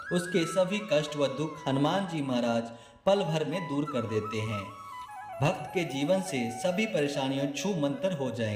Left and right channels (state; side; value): identical; both; correlation 1.00